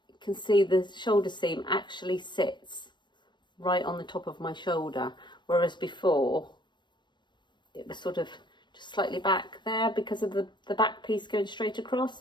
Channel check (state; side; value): late; right; 0.22 ms